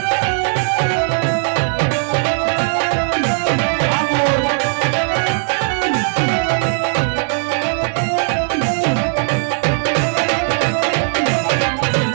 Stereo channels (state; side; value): silent; left; digital silence